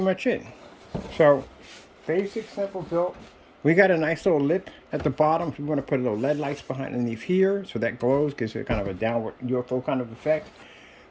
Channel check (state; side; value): identical; both; correlation 1.00